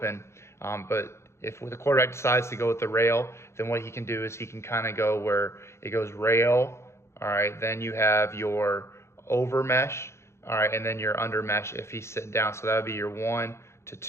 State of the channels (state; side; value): late; right; 0.13 ms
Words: But if the quarterback decides to go with the rail, then what he can do is he can kind of go where it goes rail, all right, then you have your over mesh, all right, and then your under mesh if he's sitting down. So that would be your 1 to